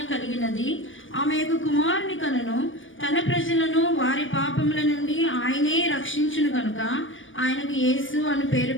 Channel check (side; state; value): right; late; 0.57 ms